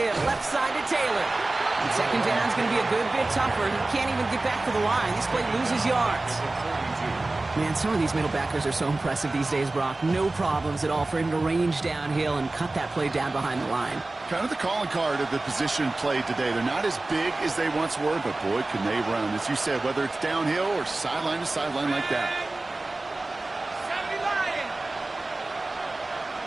left side to Taylor. And second down's going to be a good bit tougher. He can't even get back to the line. This play loses yards. Man, some of these middle backers are so impressive these days, Brock. No problems at all for him to range downhill and cut that play down behind the line. Kind of the calling card of the position played today. They're not as big as they once were, but boy, can they run. As you said, whether it's downhill or sideline to sideline like that. 70 Lions.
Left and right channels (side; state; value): left; quieter; 3.0 dB